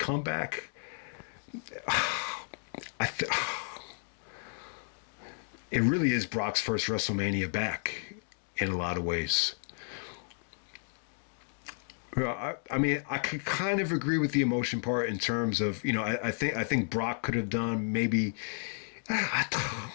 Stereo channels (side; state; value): right; silent; 56 dB below the other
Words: It really is Brock's first WrestleMania back in a lot of ways. I mean, I could kind of agree with the emotion part in terms of, I think Brock could have done maybe.